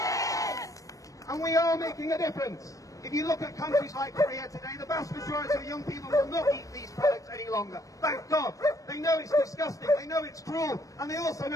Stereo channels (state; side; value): late; right; 0.16 ms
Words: And we are making a difference. If you look at countries like Korea today, the vast majority of young people will not eat these products any longer. Thank God. They know it's disgusting, they know it's cruel, and they also